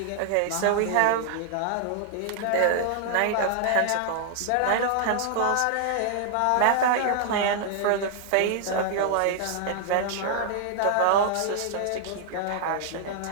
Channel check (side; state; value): both; different; correlation 0.00